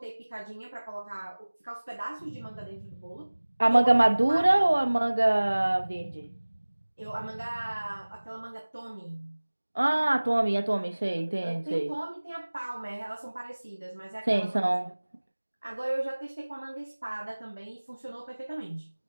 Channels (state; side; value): inverted; both; correlation -1.00